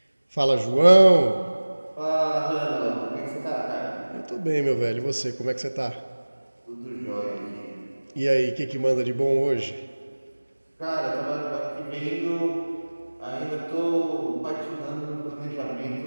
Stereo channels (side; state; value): both; inverted; correlation -1.00